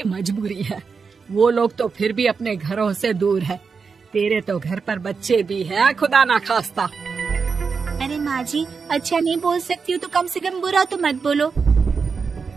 मजबूरी है, वो लोग तो फिर भी अपने घरों से दूर है। तेरे तो घर पर बच्चे भी हैं, खुदा ना खास्ता। अरे माँ जी अच्छा नहीं बोल सकती हो तो कम से कम बुरा तो मत बोलो।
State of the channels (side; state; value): left; quieter; 5.3 dB